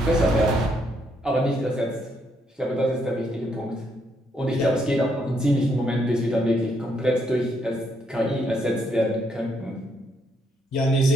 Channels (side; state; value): both; normal; correlation 0.74